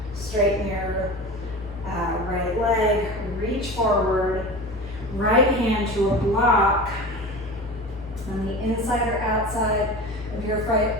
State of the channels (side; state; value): both; normal; correlation 0.33